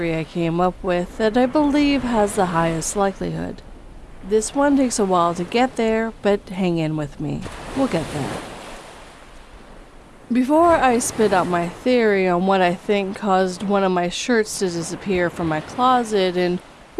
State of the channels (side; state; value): both; identical; correlation 1.00